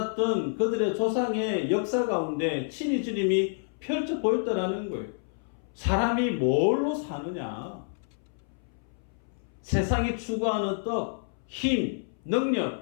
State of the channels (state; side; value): silent; right; 59 dB below the other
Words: 그들의 조상의 역사 가운데 친히 주님이 펼쳐 보였다라는 거예요. 사람이 뭘로 사느냐? 세상이 추구하는 떡, 힘,